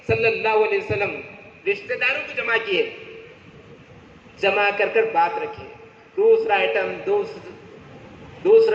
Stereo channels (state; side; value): identical; both; correlation 1.00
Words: सल्लल्लाहु अलैहि वसल्लम? रिश्तेदारों को जमा किए, जमा कर कर बात रखी। दूसरा आइटम,